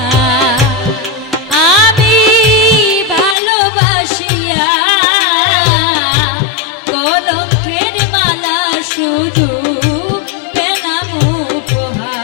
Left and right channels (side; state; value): right; drops out; at 3.4 s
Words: আমি ভালোবাসিয়া কলঙ্কের মালা শুধু পেলাম